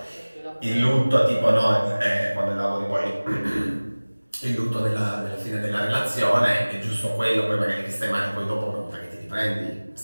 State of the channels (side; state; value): both; inverted; correlation -1.00